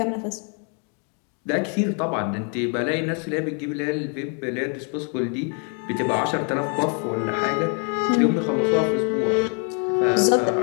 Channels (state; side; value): quieter; right; 39.8 dB